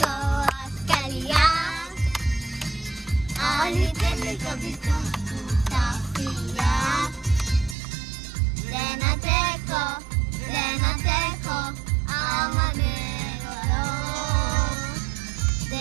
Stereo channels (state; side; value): drops out; left; at 7.8 s